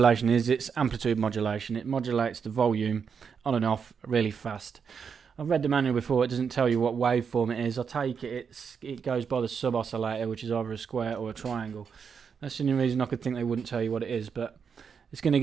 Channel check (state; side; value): quieter; left; 6.5 dB